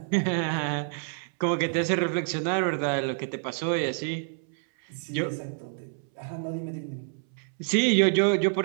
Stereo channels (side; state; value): left; silent; 60 dB below the other